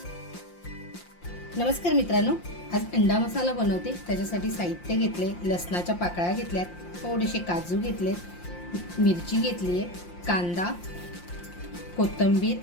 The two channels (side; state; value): right; late; 5.7 ms